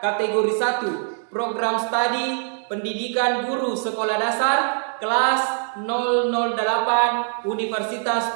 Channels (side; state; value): left; silent; digital silence